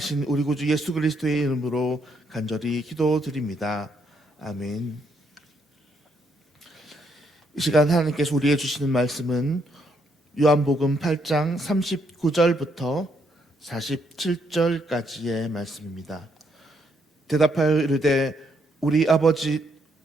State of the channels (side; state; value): both; normal; correlation 0.74